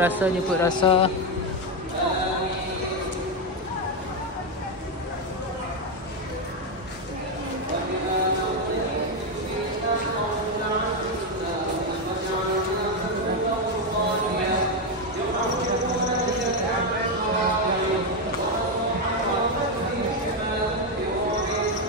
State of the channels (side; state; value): both; normal; correlation 0.07